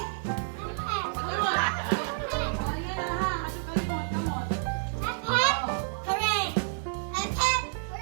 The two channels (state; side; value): silent; left; digital silence